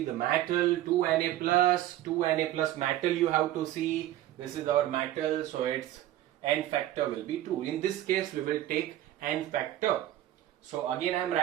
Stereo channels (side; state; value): left; quieter; 13.7 dB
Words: the metal, 2Na plus metal you have to see. This is our metal, so its N factor will be 2. In this case we will take N factor. So again I am